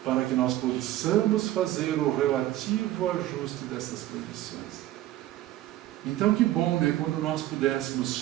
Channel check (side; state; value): left; quieter; 14.6 dB